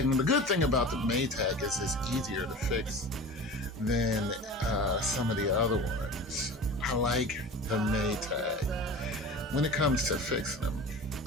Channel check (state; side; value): normal; both; correlation 0.36